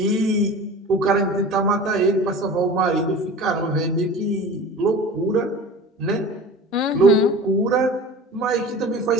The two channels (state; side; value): normal; both; correlation 0.37